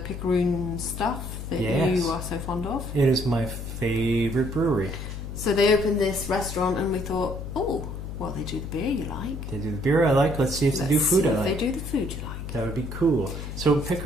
Picaroon stuff that Yes. you are so fond of. It is my favourite brewery. So they opened this restaurant and we thought, oh, well, they do the beer you like. They do the beer I like. Let's see if they do food I like. They do the food you like. That would be cool. So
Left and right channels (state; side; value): noise; left; hum, 7 dB below the sound